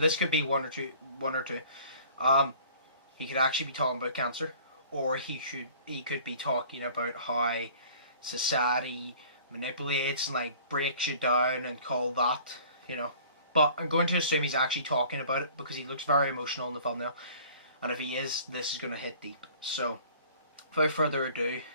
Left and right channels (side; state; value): both; inverted; correlation -0.50